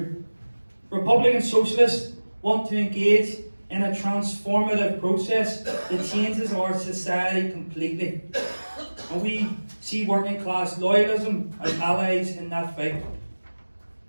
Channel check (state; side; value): inverted; both; correlation -1.00